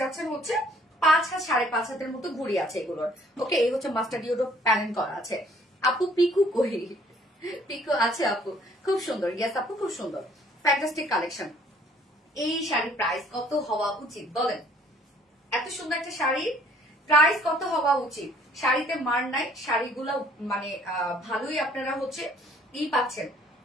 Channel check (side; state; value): both; normal; correlation 0.60